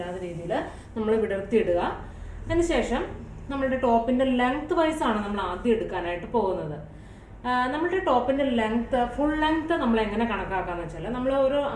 രീതിയിൽ നമ്മൾ വിടർത്തി ഇടുക. അതിനുശേഷം നമ്മളുടെ ടോപ്പിന്റെ ലെങ്ത് വൈസ് ആണ് നമ്മൾ ആദ്യം എടുക്കാനായിട്ട് പോകുന്നത്. നമ്മളുടെ ടോപ്പിന്റെ ലെങ്ത്, ഫുൾ ലെങ്ത് നമ്മൾ എങ്ങനെ കണക്കാക്കാന്ന് വെച്ചാൽ, നമ്മൾ ഒരു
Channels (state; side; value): identical; both; correlation 1.00